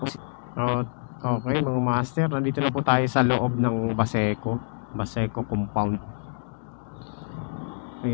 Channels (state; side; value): silent; right; digital silence